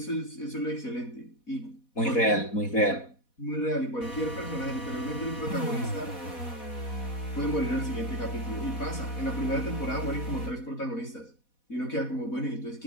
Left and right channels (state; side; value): late; right; 4.1 ms